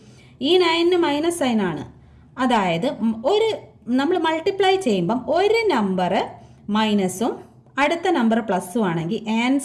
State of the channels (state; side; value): identical; both; correlation 1.00